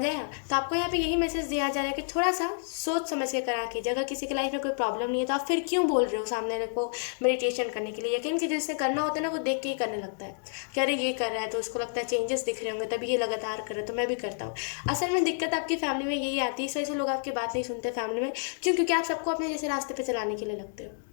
आया? तो आपको यहाँ पे यही मैसेज दिया जा रहा है कि थोड़ा सा सोच समझ के करा कीजिए। अगर किसी की लाइफ में कोई प्रॉब्लम नहीं है तो आप फिर क्यों बोल रहे हो सामने रखो मेडिटेशन करने के लिए। यकीन कीजिए, जिससे करना होता है ना, वो देख के ही करने लगता है कि अरे ये कर रहा है तो उसको लगता है चेंजेस दिख रहे होंगे, तभी ये लगातार कर रहा है तो मैं भी करता हूँ। असल में दिक्कत आपकी फैमिली में यही आती है, इस वजह से लोग आपकी बात नहीं सुनते फैमिली में। क्यों? क्योंकि आप सबको अपने जैसे रास्ते पर चलाने के लिए लगते हो।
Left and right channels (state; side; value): silent; right; digital silence